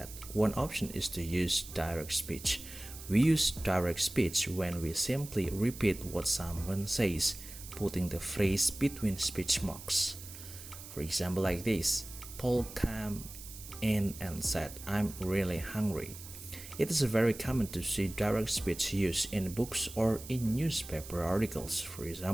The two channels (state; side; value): noise; right; hiss, 14 dB below the sound